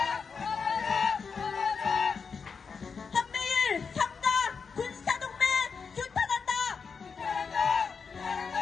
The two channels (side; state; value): right; quieter; 5.5 dB